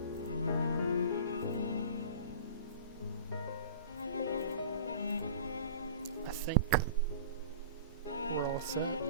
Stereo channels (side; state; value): both; inverted; correlation -0.39